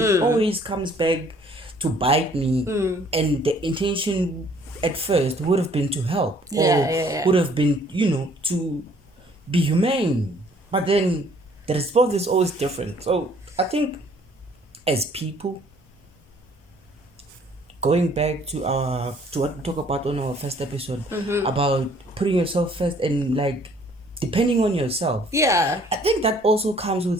always comes back to bite me, and the intention at first would have been to help, would have been, to be humane. But then the response is always different. So I think as people, going back to what we talked about on our first episode about putting yourself first and like depending on yourself. Yeah. I think that also comes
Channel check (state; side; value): normal; both; correlation 0.59